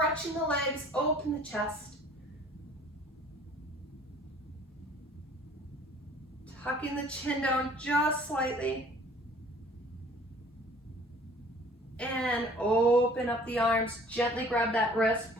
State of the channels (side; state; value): both; normal; correlation 0.52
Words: the legs, open the chest. Tucking the chin down just slightly. And open up the arms, gently grab that wrist,